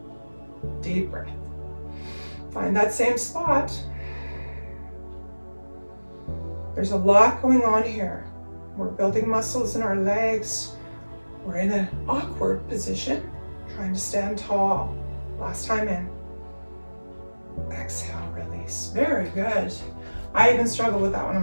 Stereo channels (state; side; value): inverted; both; correlation -1.00